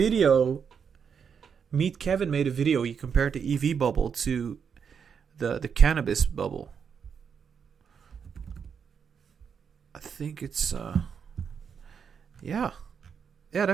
Meet Kevin made a video. He compared the EV bubble to the cannabis bubble. I think it's yeah. Yeah,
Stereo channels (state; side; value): quieter; left; 6.8 dB